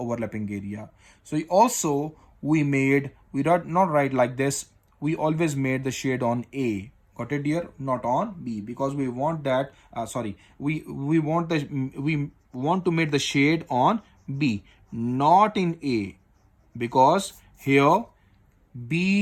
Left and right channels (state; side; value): identical; both; correlation 1.00